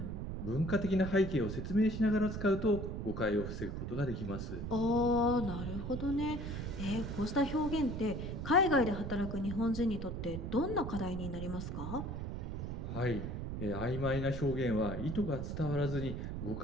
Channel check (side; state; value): right; noise; rumble, 5 dB below the sound